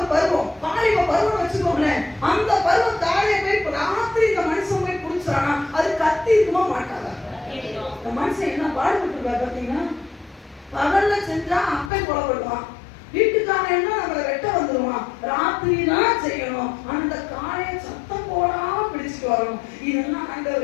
பருவம், பாலிவ பருவம் வச்சுக்கோங்களேன். அந்த பருவம் காளையை போய் ராத்திரி இந்த மனுஷன் போய் பிடிச்சானா அது கத்தி இருக்குமா மாட்டாதா? இந்த மனுஷன் என்ன பாடுபட்டு பாத்தீங்கன்னா, பகல்ல செஞ்சா அப்பே கொலைப்படுவான், வீட்டுக்காரன் என்ன நம்மளை வெட்ட வந்துருவான், ராத்திரி தான் செய்யணும். அந்த காளையை சத்தம் போடாம பிடிச்சிட்டு வரணும். இதெல்லாம்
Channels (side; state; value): right; drops out; at 11.9 s